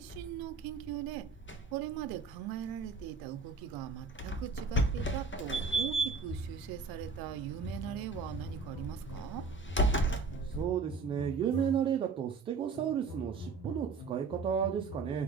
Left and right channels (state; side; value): quieter; left; 4.5 dB